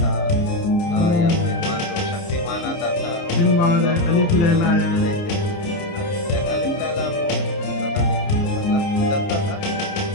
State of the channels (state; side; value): late; right; 29 ms